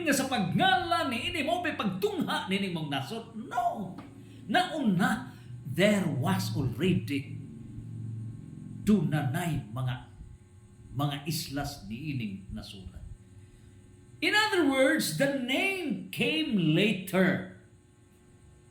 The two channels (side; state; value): both; identical; correlation 1.00